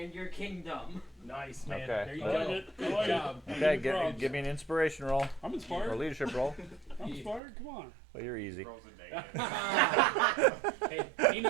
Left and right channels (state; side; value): drops out; left; at 7.4 s